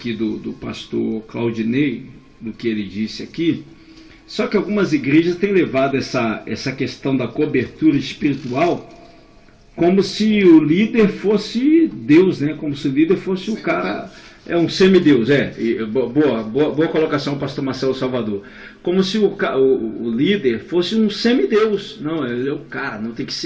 do pastor Claudinei, do que ele disse aqui, só que algumas igrejas têm levado essa questão da cobertura espiritual como se o líder fosse Deus, né? Como se o líder fosse o cara, um semideus, boa colocação, pastor Marcelo Salvador. Como se o líder fosse um semideus. Não, ele é o cara, não tem que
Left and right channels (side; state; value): both; identical; correlation 1.00